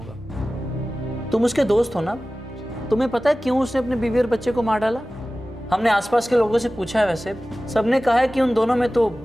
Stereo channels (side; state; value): both; normal; correlation 0.96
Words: तुम उसके दोस्त हो ना? तुम्हें पता है क्यों उसने अपने बीवी और बच्चे को मार डाला? हमने आसपास के लोगों से पूछा है, वैसे सबने कहा है कि उन दोनों में तो